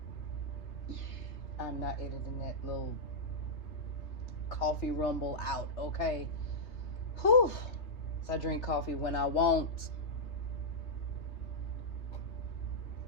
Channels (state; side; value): late; right; 3.2 ms